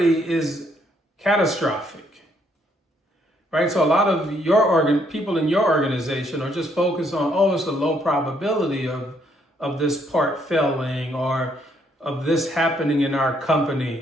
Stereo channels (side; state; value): both; normal; correlation 0.70